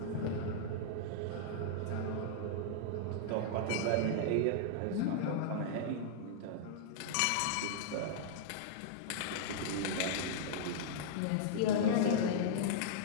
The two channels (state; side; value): different; both; correlation -0.02